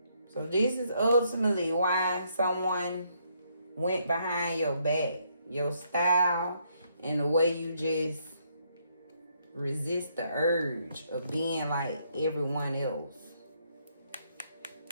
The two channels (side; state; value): both; inverted; correlation -0.73